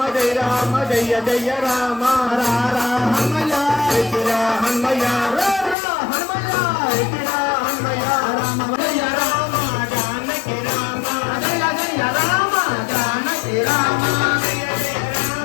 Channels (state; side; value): drops out; right; at 5.8 s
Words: జయ రామ జయ జయ రామ రా రా హనుమయ్య ఎత్తిరా హనుమయ్య రా రా హనుమయ్య ఎత్తిరా హనుమయ్య రామ జయ రామ జానకి రామ జయ జయ రామ జానకి రామ జయ జయ